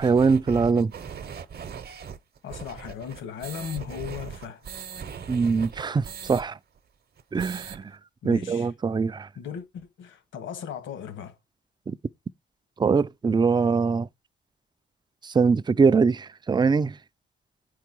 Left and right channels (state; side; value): quieter; left; 4.4 dB